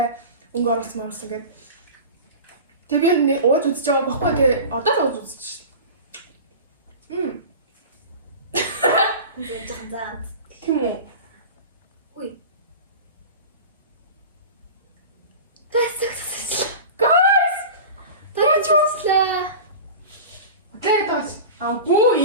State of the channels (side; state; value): both; inverted; correlation -0.32